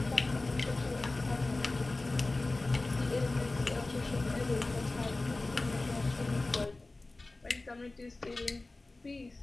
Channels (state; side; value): quieter; right; 3.1 dB